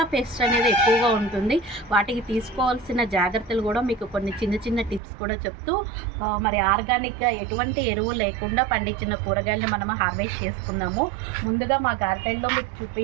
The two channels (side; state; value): left; drops out; at 5.0 s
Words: పెస్ట్ అనేది ఎక్కువగా ఉంటుంది. వాటికి తీసుకోవాల్సిన జాగ్రత్తలు కూడా మీకు కొన్ని చిన్న చిన్న టిప్స్ కూడా చెప్తూ మరి ఆర్గానిక్గా ఎటువంటి ఎరువు లేకుండా పండించిన కూరగాయలను మనం హార్వెస్ట్ చేసుకున్నాము. ముందుగా మా గార్డెన్లో మీకు